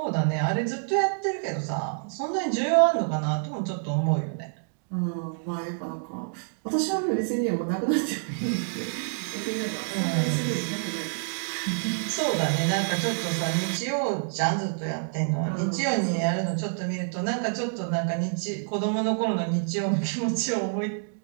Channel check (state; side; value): silent; left; digital silence